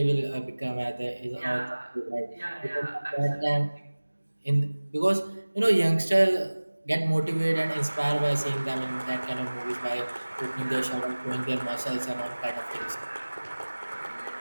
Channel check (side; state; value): both; inverted; correlation -1.00